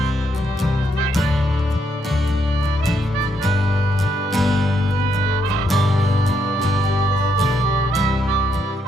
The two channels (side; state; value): both; normal; correlation 0.77